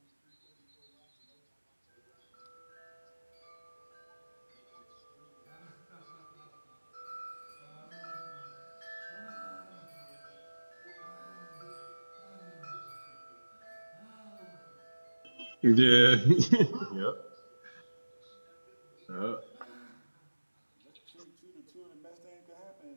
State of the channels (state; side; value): inverted; both; correlation -1.00